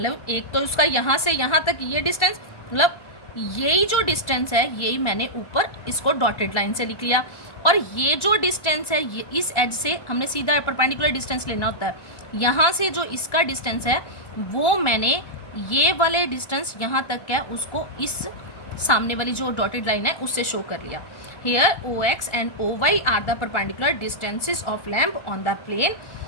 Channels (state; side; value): late; right; 1.4 ms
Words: एक तो उसका यहाँ से यहाँ तक ये डिस्टेंस, मतलब यही जो डिस्टेंस है यही मैंने ऊपर इसको डॉटेड लाइन से लिख लिया, और ये जो डिस्टेंस है ये इस एज से हमने सीधा परपेंडिकुलर डिस्टेंस लेना होता है, यहाँ से जो इसका डिस्टेंस है वो मैंने ये वाले डिस्टेंस यहाँ तक है उसको इस सामने वाली जो डॉटेड लाइन है उससे शो कर लिया। Here O X and O Y are the perpendicular distances of lamp on the plane.